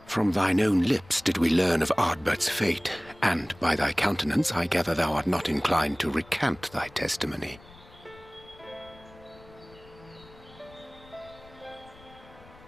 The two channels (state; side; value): noise; left; rumble, 23 dB below the sound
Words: From thine own lips did we learn of Ardbert's fate, and by thy countenance I gather thou art not inclined to recant thy testimony.